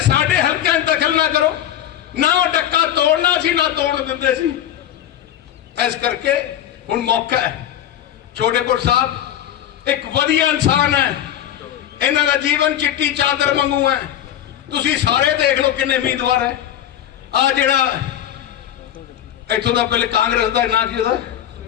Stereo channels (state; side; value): quieter; right; 11.1 dB